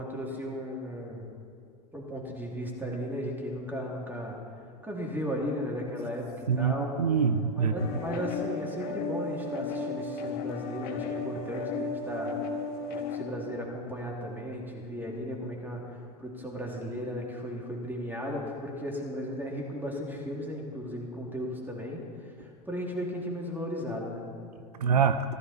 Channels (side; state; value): both; normal; correlation 0.10